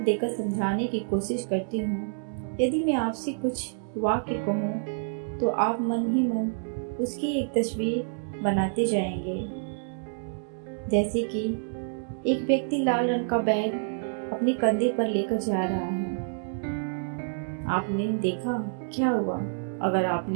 देकर समझाने की कोशिश करती हूँ। यदि मैं आपसे कुछ वाक्य कहूँ तो आप मन ही मन उसकी एक तस्वीर बनाते जाएंगे। जैसे कि एक व्यक्ति लाल रंग का बैग अपने कंधे पर लेकर जा रहा है। आपने देखा क्या हुआ? अगर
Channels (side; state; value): left; silent; digital silence